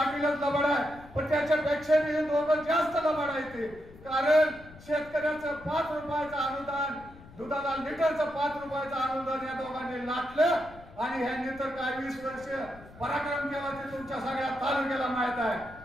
लबाड आहे, पण त्याच्यापेक्षा मी दोघं जास्त लबाड आहे ते। कारण शेतकऱ्याचं 5 रुपयाचं अनुदान, दुधाला लिटरचं 5 रुपयाचं अनुदान या दोघांनी लाटलं आणि ह्यांनी तर काय 20 वर्ष पराक्रम केला ते तुमच्या सगळ्या तालुक्याला माहित आहे।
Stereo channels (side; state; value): left; noise; rumble, 20 dB below the sound